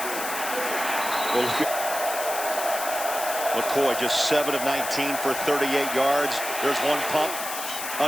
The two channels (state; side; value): noise; left; hiss, 6 dB below the sound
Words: Well, McCoy just 7 of 19 for 38 yards. There's one pump